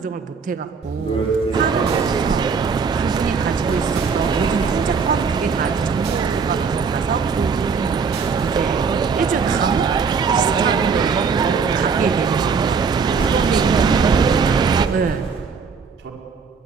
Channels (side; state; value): left; quieter; 5.5 dB